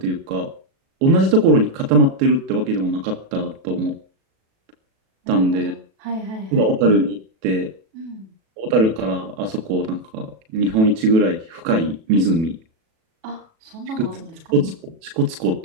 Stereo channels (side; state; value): left; late; 37 ms